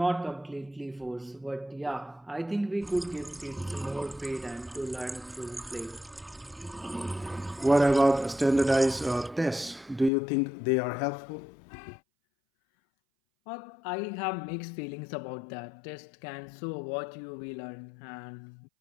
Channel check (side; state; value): right; drops out; at 10.1 s